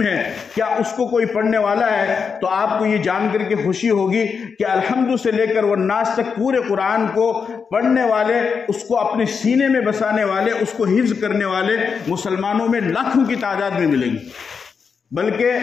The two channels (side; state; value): right; quieter; 5.9 dB